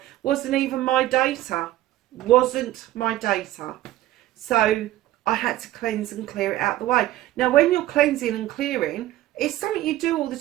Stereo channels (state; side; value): quieter; left; 15.0 dB